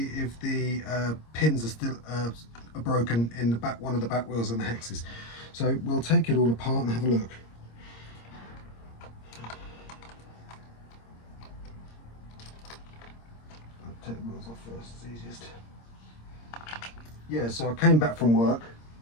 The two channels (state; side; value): late; right; 26 ms